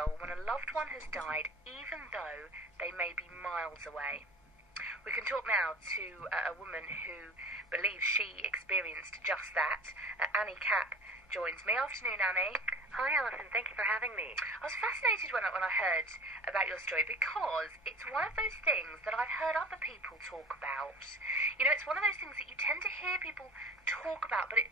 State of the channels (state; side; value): normal; both; correlation 0.41